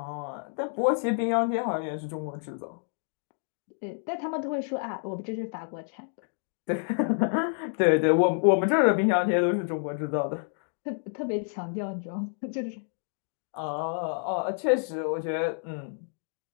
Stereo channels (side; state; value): right; silent; 59 dB below the other